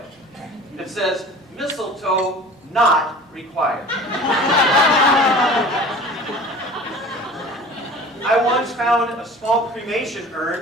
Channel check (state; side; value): normal; both; correlation 0.42